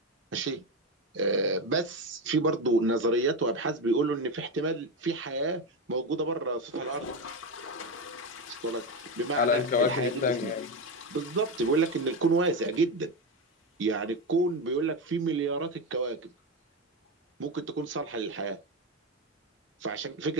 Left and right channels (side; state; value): both; normal; correlation 0.14